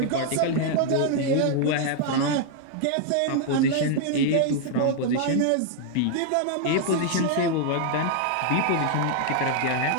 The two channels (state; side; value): different; both; correlation 0.00